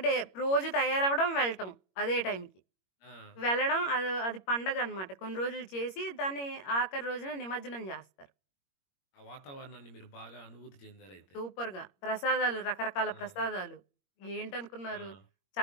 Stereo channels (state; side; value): late; right; 21 ms